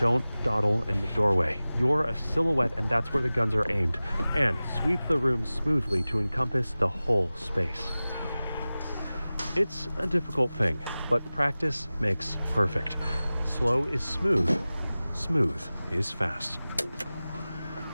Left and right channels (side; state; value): both; inverted; correlation -0.97